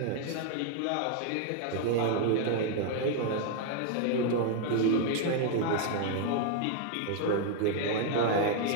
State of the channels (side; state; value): both; different; correlation 0.00